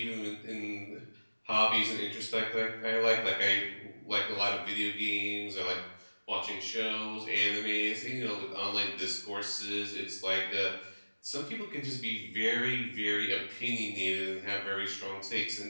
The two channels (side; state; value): both; inverted; correlation -1.00